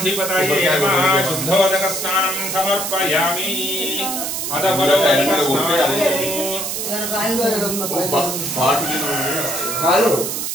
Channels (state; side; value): noise; right; hiss, 3 dB below the sound